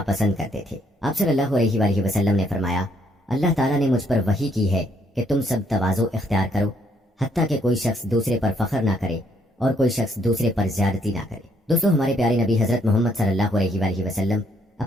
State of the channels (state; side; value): normal; both; correlation 0.70